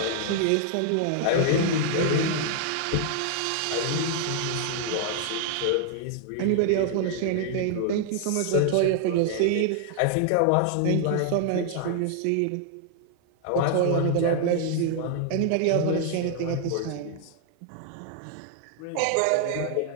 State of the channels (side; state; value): both; different; correlation 0.00